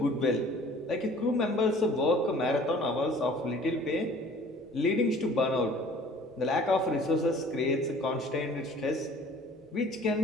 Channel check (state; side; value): normal; both; correlation 0.50